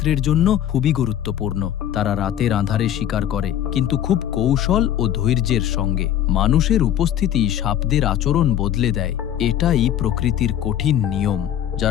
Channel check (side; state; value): right; quieter; 11.0 dB